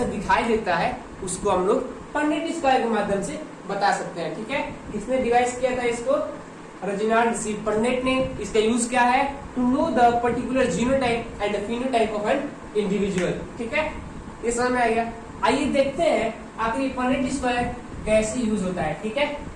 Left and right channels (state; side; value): identical; both; correlation 1.00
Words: दिखाई देता है, उसको हम लोग पुन्नेट स्क्वायर के माध्यम से बता सकते हैं। ठीक है, किसने डिवाइस किया था इसको? रेजिनाल्ड सी पुन्नेट ने। इसका यूज क्या है? To know the particular genotype and phenotype of an individual. ठीक है, ये समझ में आ गया। आइए देखते हैं आखिर ये पुन्नेट स्क्वायर कैसे यूज होता है। ठीक है,